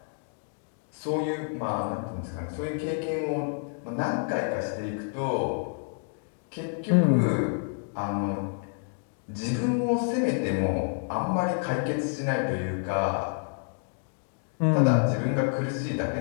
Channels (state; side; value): silent; right; 57 dB below the other